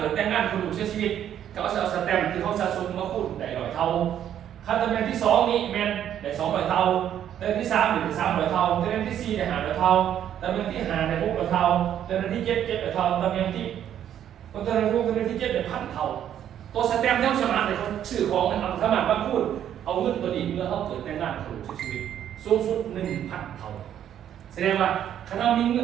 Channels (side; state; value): left; quieter; 10.2 dB